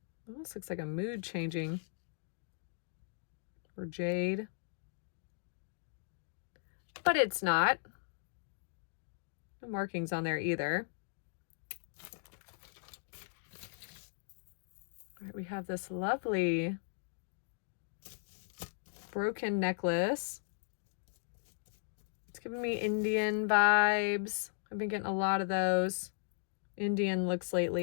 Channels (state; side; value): silent; right; digital silence